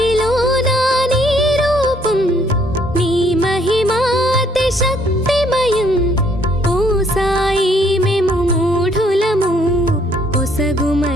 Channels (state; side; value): normal; both; correlation 0.66